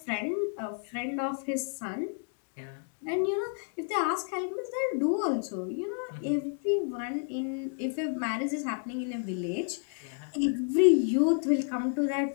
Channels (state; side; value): silent; right; 57 dB below the other